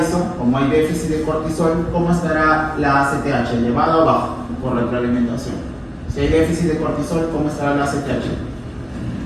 como hay déficit de cortisol, ¿cómo estará la ACTH? ¿Elevado o bajo? Por retroalimentación. Si hay déficit de cortisol, ¿cómo estará la ACTH?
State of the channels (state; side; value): identical; both; correlation 1.00